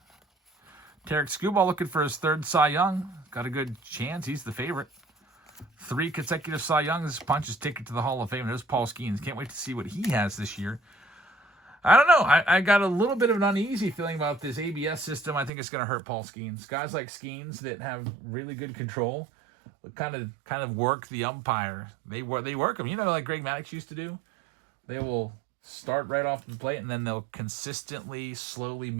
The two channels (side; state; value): left; drops out; at 15.5 s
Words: Tarek Skubal looking for his 3rd Cy Young. Got a good chance. He's the favorite. 3 consecutive Cy Youngs. Punches ticket to the Hall of Fame. There's Paul Skeens. Can't wait to see what he has this year. I don't know. I got a little bit of an uneasy feeling about this ABS system. I think it's going to hurt Paul Skeens. Guys like Skeens that have really good control kind of work the umpire. They work them. You know, like Greg Maddux used to do. They will start right off the plate, and then they'll consistently, slowly